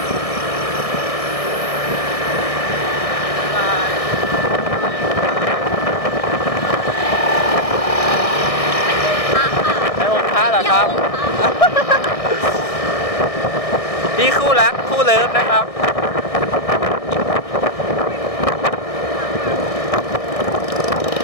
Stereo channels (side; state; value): right; late; 1.6 ms